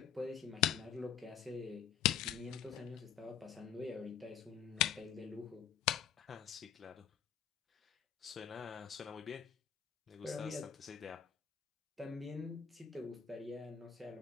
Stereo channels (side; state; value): right; quieter; 9.0 dB